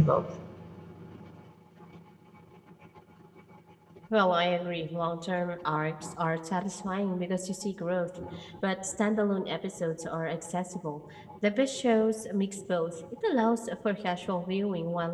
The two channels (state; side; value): identical; both; correlation 1.00